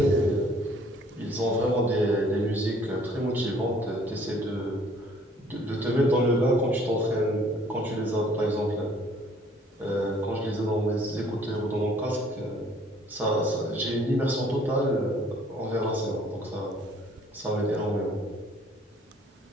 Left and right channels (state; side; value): normal; both; correlation 0.58